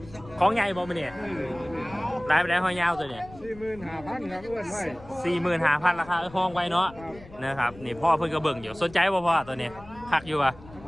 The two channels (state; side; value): noise; left; rumble, 20 dB below the sound